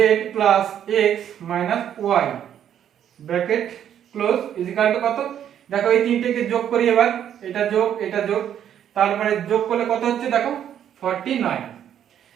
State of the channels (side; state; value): left; quieter; 9.8 dB